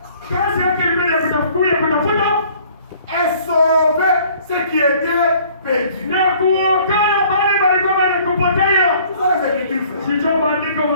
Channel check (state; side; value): inverted; both; correlation -0.55